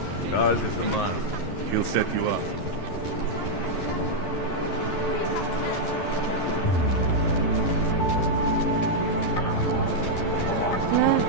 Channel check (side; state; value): right; late; 11 ms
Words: Charles is the man. He'll set you up.